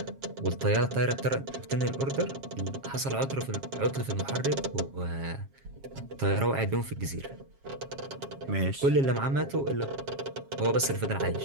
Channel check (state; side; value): late; left; 7.3 ms